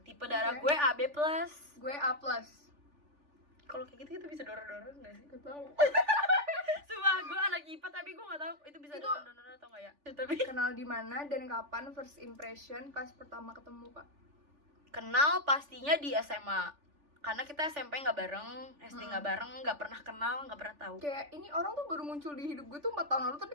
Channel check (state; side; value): late; left; 3.4 ms